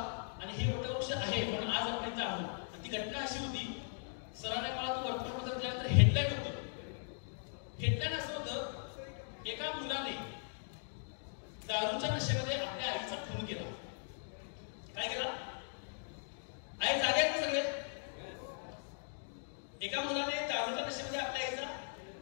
आणि हे वटवृक्ष आहे म्हणून आज आपण इथं आहोत. ती घटना अशी होती, सरांनी मला तो वर्तमानपत्र दिल्यानंतर हेडलाईन होतं. हेडलाईन असं होतं, एका मुलाने दारूच्या नशेमध्ये आपल्या आईचा खून केला. काय केला? आई जागे आहेत ना सगळे? एका मुलाने दारूच्या नशेमध्ये आपल्या आईचा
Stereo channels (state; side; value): silent; right; digital silence